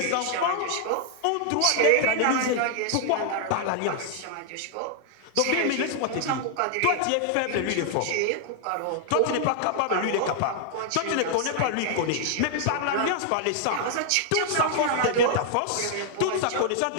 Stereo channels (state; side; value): different; both; correlation -0.01